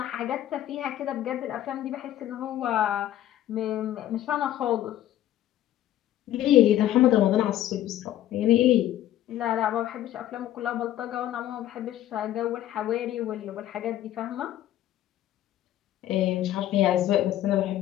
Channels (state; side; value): quieter; right; 12.8 dB